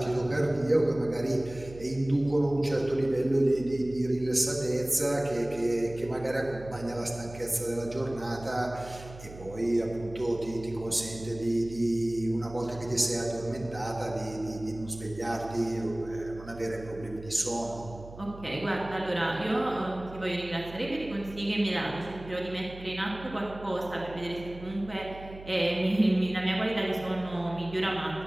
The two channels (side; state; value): right; noise; hum, 16 dB below the sound